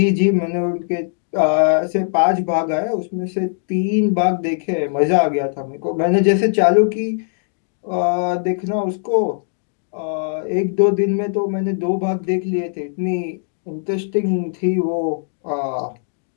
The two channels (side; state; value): right; silent; digital silence